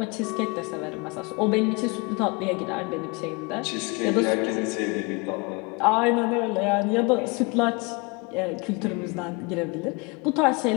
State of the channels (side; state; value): right; quieter; 28.2 dB